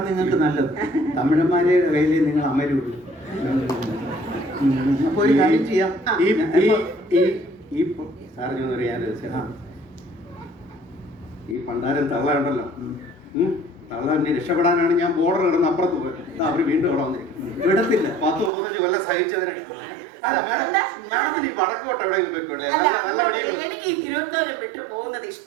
നിങ്ങൾക്ക് നല്ലത്. തമിഴന്മാരെ കയ്യിൽ നിങ്ങൾ അമരുള്ളൂ. അപ്പൊ ഒരു കാര്യം ചെയ്യാം. ഈ പണ്ടാരം തള്ളയുണ്ടല്ലോ, തള്ളന്നെ രക്ഷപ്പെടാനാണ് ഞാൻ ബോർഡർ കിടന്ന് അപ്പുറത്ത് പോയത്. അവര് വീണ്ടും അവിടെ വന്നിരിക്കും. വിടത്തില്ല. 10-35 കൊല്ലം സഹിച്ചതിന്. മാഡത്തിന് ഈ വടക്കോട്ട് എവിടെയെങ്കിലും പോയിക്കൂടെ? എനിക്ക് ഈ തിരുവനന്തപുരം വിട്ടു പോകുന്നത്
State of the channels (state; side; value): drops out; left; at 18.5 s